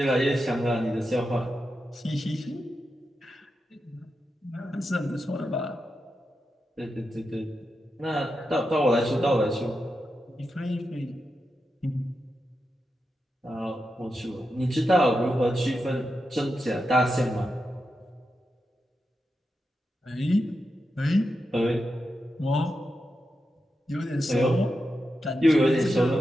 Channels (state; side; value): normal; both; correlation 0.88